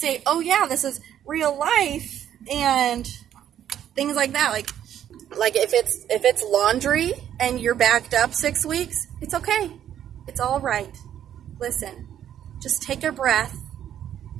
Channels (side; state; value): left; quieter; 10.4 dB